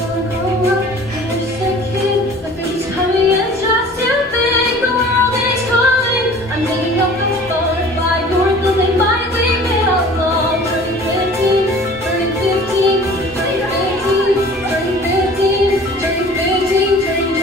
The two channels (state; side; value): normal; both; correlation 0.46